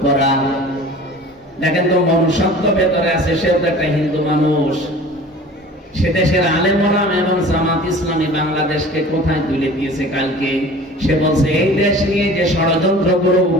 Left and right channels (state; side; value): normal; both; correlation 0.43